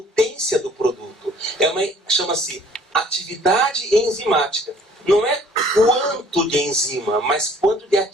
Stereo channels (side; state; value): both; normal; correlation 0.55